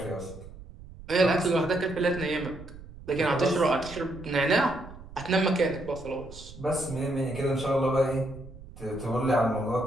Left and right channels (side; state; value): right; noise; rumble, 16 dB below the sound